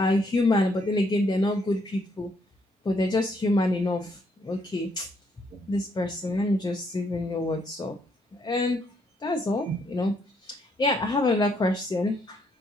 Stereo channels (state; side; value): normal; both; correlation 0.72